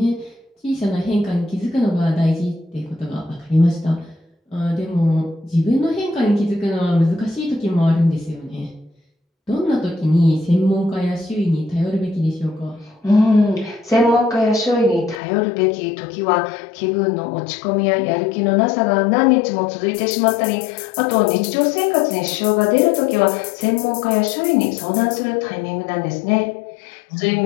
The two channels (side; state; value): right; drops out; at 15.2 s